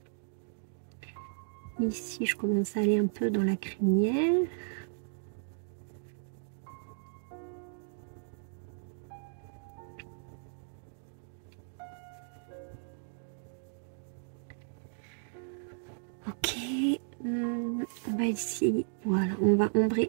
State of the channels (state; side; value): silent; left; digital silence